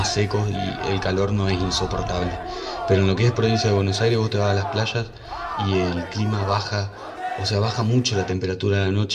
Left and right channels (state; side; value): identical; both; correlation 1.00